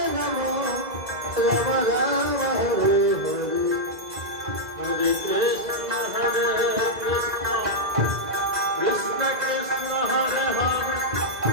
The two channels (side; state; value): left; late; 2.0 ms